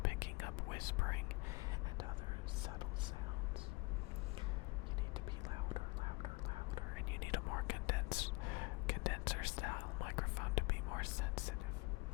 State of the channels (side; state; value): right; quieter; 26.0 dB